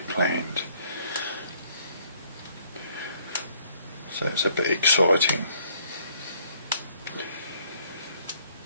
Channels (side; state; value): both; inverted; correlation -0.63